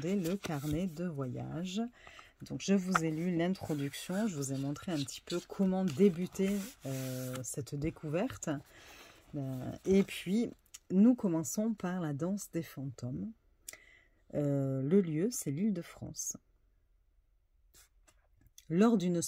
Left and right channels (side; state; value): both; identical; correlation 1.00